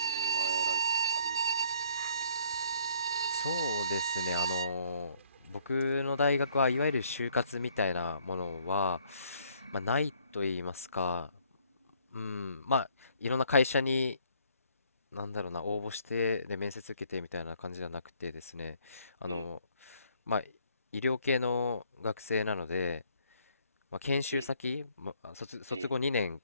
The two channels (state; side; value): inverted; both; correlation -0.63